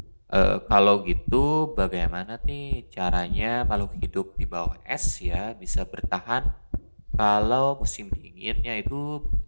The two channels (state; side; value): inverted; both; correlation -1.00